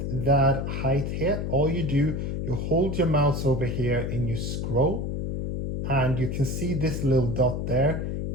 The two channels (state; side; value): noise; left; hum, 2 dB below the sound